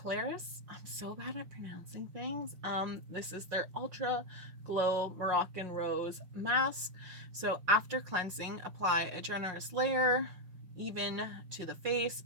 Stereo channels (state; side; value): late; left; 5.5 ms